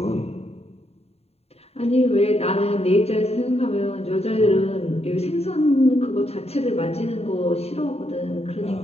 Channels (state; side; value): late; right; 0.30 ms